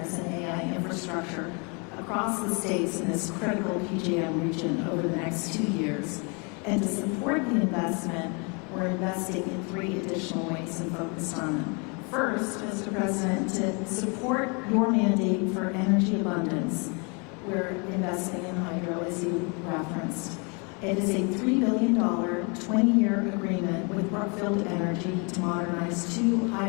and AI infrastructure across the states in this critical PJM region over the next 2 years. And to support the investment, we're investing in 3 additional ways and focused on them. First, Mr. President, to support your mandate for energy abundance, we're investing in hydro, as you referenced. It is a $3 billion, 20-year agreement with Brookfield Energy to modernize 2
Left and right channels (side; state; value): right; quieter; 33.0 dB